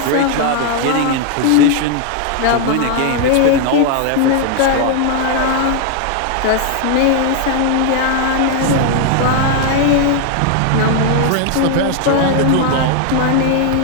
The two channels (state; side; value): different; both; correlation 0.00